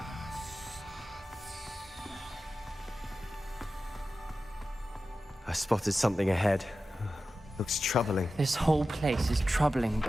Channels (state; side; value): normal; both; correlation 0.93